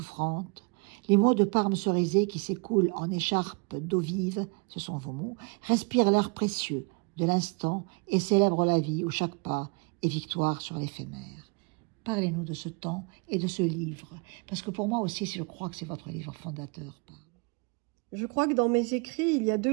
Les mots de Parme Cerisay qui s'écoulent en écharpe d'eau vive, ce sont vos mots, respirent l'air précieux de l'instant et célèbrent la vie où chaque pas est victoire sur l'éphémère. » Parlez-nous de ce temps et de ce livre, parce que pour moi aussi, je crois que c'est votre livre fondateur, Parme. Je crois que dans mes écrits, il y a 2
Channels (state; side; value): quieter; left; 33.7 dB